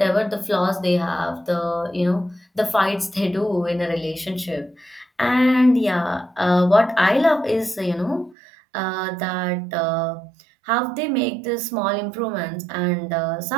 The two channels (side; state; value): left; drops out; at 8.3 s